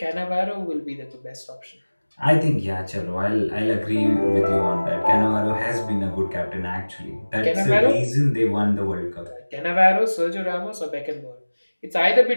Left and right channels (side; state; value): both; inverted; correlation -1.00